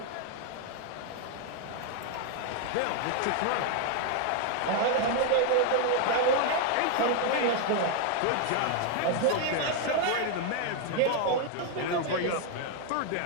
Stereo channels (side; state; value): both; different; correlation 0.00